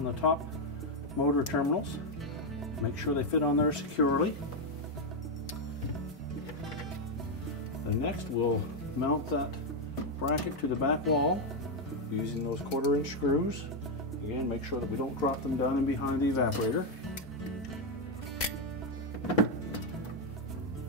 the top motor terminals. Make sure they fit on there securely. Then next we'll mount that bracket to the back wall using those 1/4-inch screws. Again, make sure that we don't drop them down in behind the evaporator.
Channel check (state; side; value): normal; both; correlation 0.03